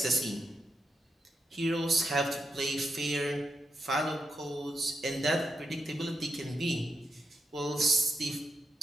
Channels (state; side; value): normal; both; correlation 0.85